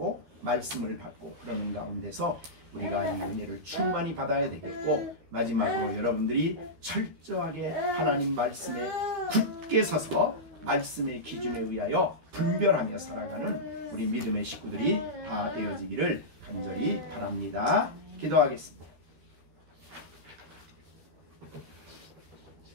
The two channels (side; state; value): left; late; 13 ms